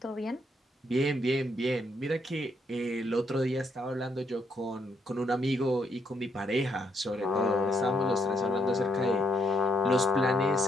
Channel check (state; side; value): normal; both; correlation 0.74